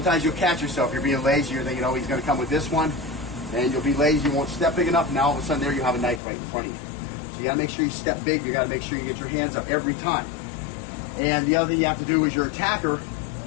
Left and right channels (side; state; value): right; drops out; at 6.2 s